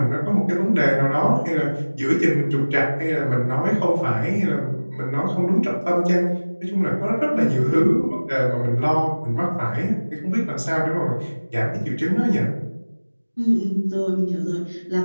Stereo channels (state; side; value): inverted; both; correlation -1.00